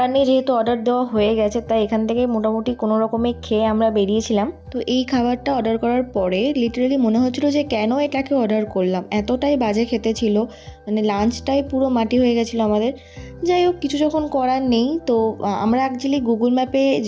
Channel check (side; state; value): both; identical; correlation 1.00